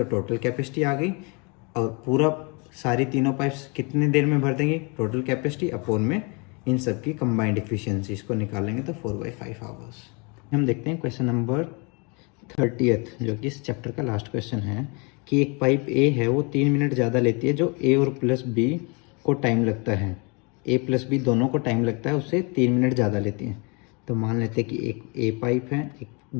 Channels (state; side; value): quieter; right; 31.6 dB